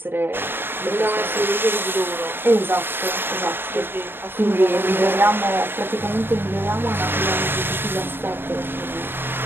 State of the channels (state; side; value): late; left; 0.099 ms